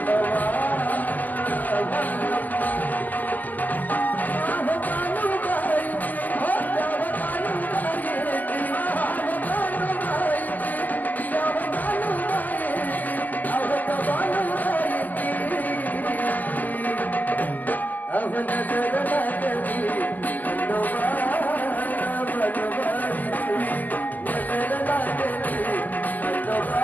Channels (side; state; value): right; late; 0.082 ms